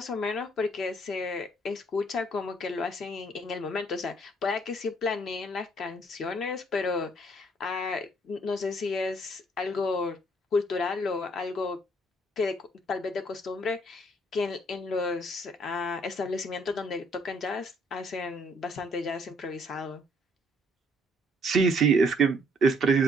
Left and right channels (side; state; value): both; normal; correlation 0.65